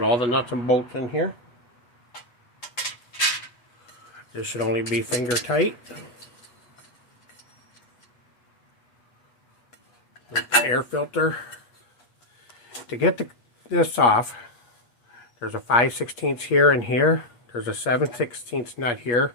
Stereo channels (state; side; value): late; right; 8.4 ms